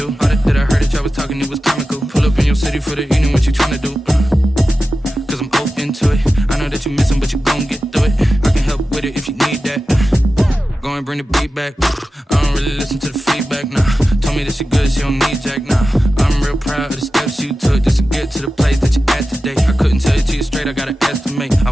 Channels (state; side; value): normal; both; correlation 0.93